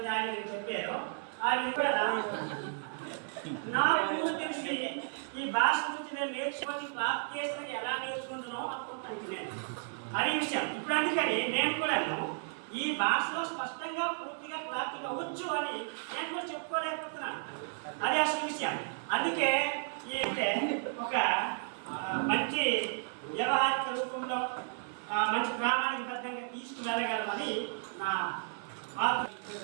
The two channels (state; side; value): silent; left; 55 dB below the other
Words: ఆ విధంగా చెప్పారో ఆ విధంగా నాకు తెలిసి ఈ భాష గురించి నేను నేర్చుకొని క్లాస్ చేసిన ఎలా నేర్చుకుంటున్నావు అనుకుంటాను నేను అదే విషయం. ఇప్పుడు అందుకని నేను కూడా ఈ భాషలో స్పష్టంగా పూర్తిగా క్లారిటీగా వచ్చు అని నేను కూడా చెప్పుకోలేకపోతున్నాను. అదే అసలు విషయం. అందుకే ఈ ఒక మంచి వ్యవహారిక రూపంలో మంచి ప్రామాణికబద్ధంగా తీసుకువెళ్ళగలమని నా